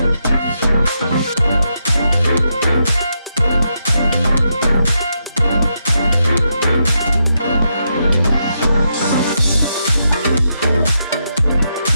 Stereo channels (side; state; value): both; inverted; correlation -0.82